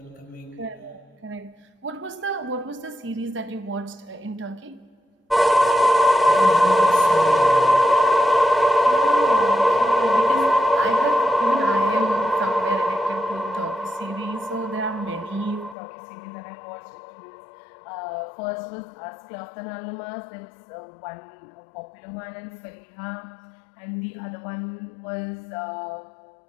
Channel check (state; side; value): drops out; right; at 15.8 s